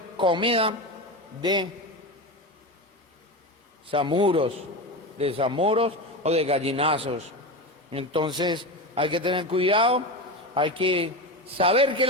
comida de zamuros o de gallinazos. Entonces hay que tener cuidado, hay que saber que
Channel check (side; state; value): both; normal; correlation 0.21